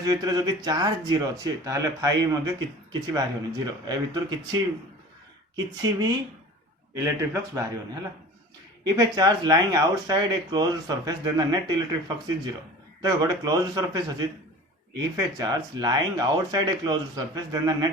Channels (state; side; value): normal; both; correlation 0.40